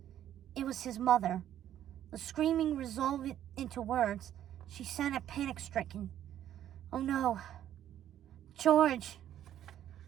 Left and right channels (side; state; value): left; quieter; 11.2 dB